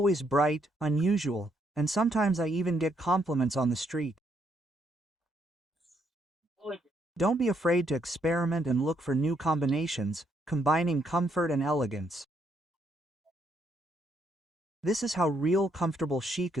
bright, unusual, and sometimes I even get compliments on the street. Don't be afraid to experiment and look for new combinations, combining comfort and elegance. This is how real comfortable chic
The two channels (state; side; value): normal; both; correlation 0.74